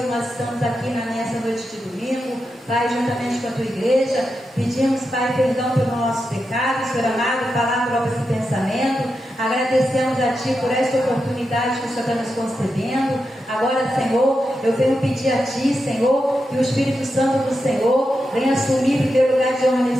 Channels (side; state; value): both; normal; correlation 0.88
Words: nós estamos aqui nessa noite de domingo, Pai, juntamente com a tua igreja, pedimos, Pai, perdão pelo nosso pecado, Senhor amado, palavra, obra e pensamento. Agradecemos a Ti por esta oportunidade que o Senhor está nos concedendo. Agora, Senhor, eu venho pedir a Ti, Senhor, que o Espírito Santo do Senhor venha assumir o primeiro lugar de honra